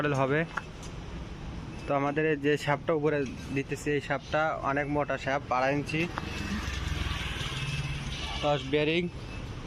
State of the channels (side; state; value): both; identical; correlation 1.00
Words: হবে। তো আমাদের যে শ্যাপটা উপরে দিতেছি, এই শ্যাপটা অনেক মোটা শ্যাপ, 2.5 ইঞ্চি, 10 বেয়ারিং